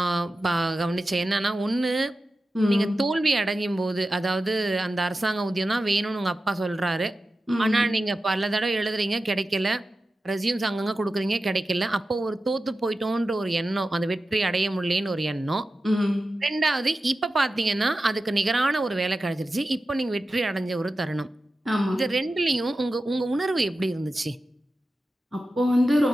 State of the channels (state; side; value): normal; both; correlation 0.93